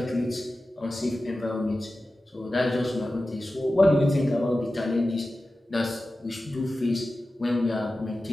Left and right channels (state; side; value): normal; both; correlation 0.94